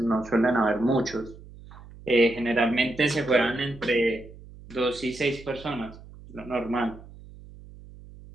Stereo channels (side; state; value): right; noise; hum, 19 dB below the sound